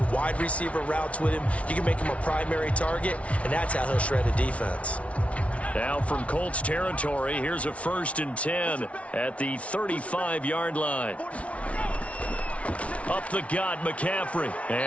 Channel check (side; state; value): right; late; 0.064 ms